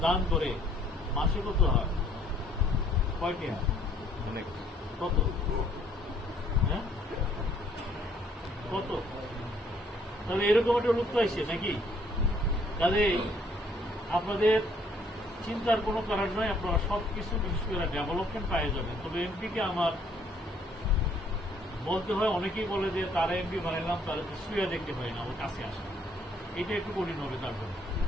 দান করে, মাসে কত হয়? কয়টি হয়? অনেক। কত? হ্যাঁ, কত? তাহলে এরকম একটা লোক পাইছে নাকি? তাহলে আপনাদের চিন্তার কোনো কারণ নয়, আপনারা সবকিছু বিশেষ করে ডেভেলপমেন্ট পাই যাবেন। তবে এমপিকে আমার বলতে হয়, অনেকেই বলে যে তারা এমপি বানাইলাম, তারা তো শুয়ে দেখতে হয় না, ওর কাছে আসে। এটা একটু কঠিন হবে তার জন্য,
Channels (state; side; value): normal; both; correlation 0.64